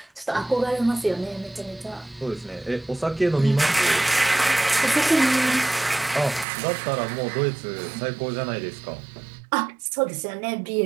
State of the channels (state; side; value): drops out; left; at 6.5 s